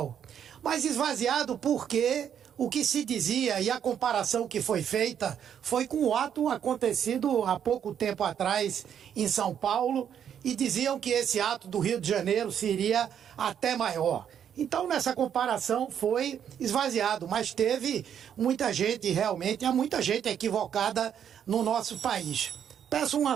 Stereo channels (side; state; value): left; quieter; 8.9 dB